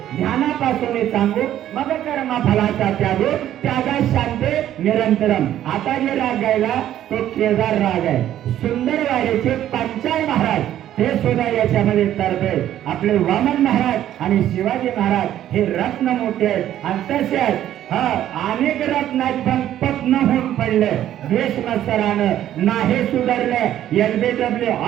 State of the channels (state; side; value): quieter; left; 11.9 dB